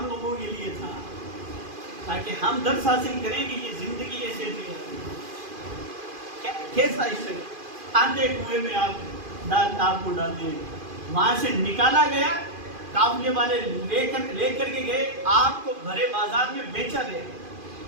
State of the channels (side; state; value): left; late; 2.5 ms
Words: لوگوں کے لیے تھا تاکہ ہم درس حاصل کریں کہ یہ زندگی ایسے بھی ہے. کیسا اسٹرگل. آندھے کنویں میں آپ کو ڈال دیں، وہاں سے نکالا گیا، قافلے والے لے کر کے گئے، آپ کو بھرے بازار میں بیچا گیا.